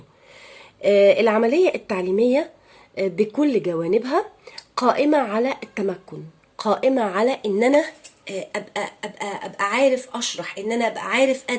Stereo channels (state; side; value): identical; both; correlation 1.00